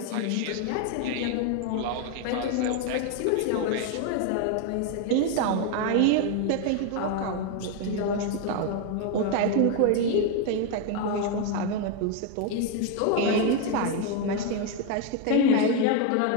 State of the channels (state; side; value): different; both; correlation 0.01